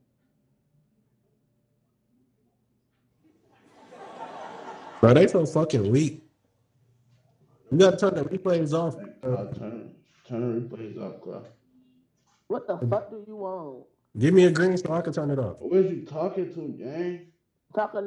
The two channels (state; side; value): identical; both; correlation 1.00